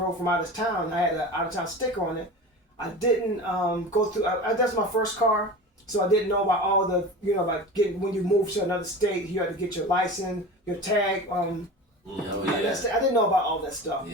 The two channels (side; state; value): both; normal; correlation 0.33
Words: from out of town. I had an out of town sticker on it. I didn't go through. That's my first car, so I didn't know about all the about getting when you move to another state, you had to get your license, your tag. I didn't know about all that stuff.